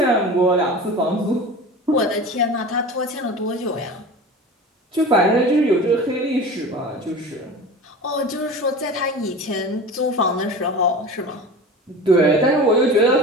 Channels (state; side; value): normal; both; correlation 0.34